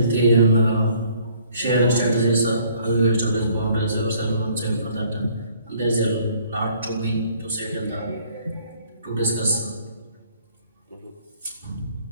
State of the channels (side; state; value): both; inverted; correlation -0.60